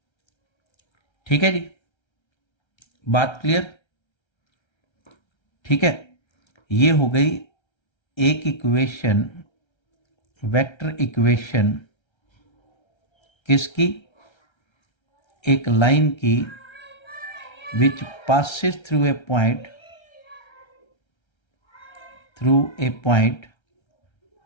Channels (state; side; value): late; right; 1.3 ms